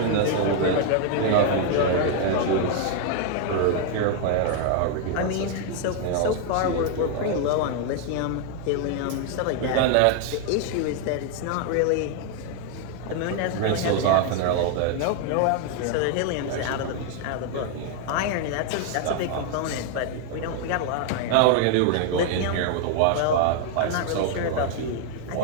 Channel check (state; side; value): different; both; correlation 0.00